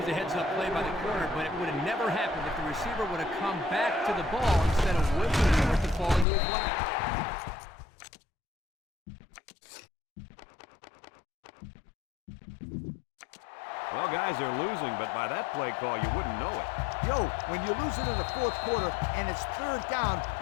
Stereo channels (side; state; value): right; drops out; at 6.2 s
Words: a heads-up play by the corner, but it would have never happened if the receiver would have come back to the ball instead of whipping for it to fall into his lap. Well, guys, they're losing, but by that play call, you wouldn't know it. Yo, when you're losing in the 4th quarter and it's 3rd down,